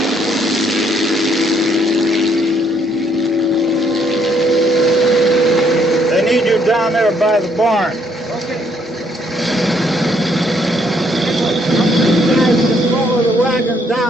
They need you down there by the barn. Follow the wagon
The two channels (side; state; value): both; normal; correlation 0.69